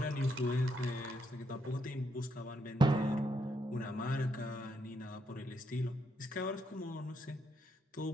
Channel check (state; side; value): normal; both; correlation 0.77